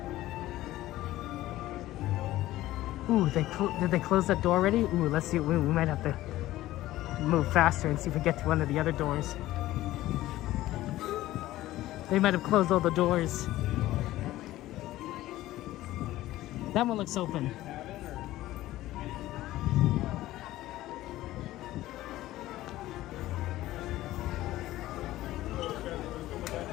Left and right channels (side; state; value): right; quieter; 15.7 dB